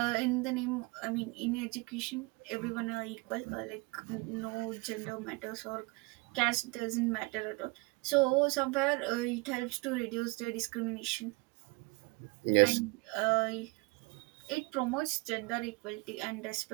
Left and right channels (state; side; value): quieter; left; 26.6 dB